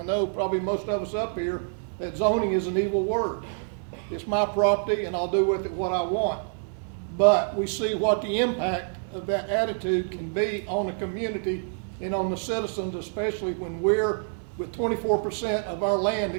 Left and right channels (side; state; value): left; silent; digital silence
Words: know probably most of us up here that zoning is an evil word. It's my property and I'll do with it what I want. But we see what the impact of that attitude can be on the community and on the citizens, especially when we're with 24% of our land